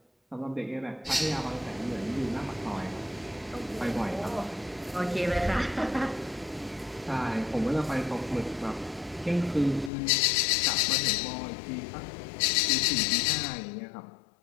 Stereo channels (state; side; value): drops out; right; at 9.9 s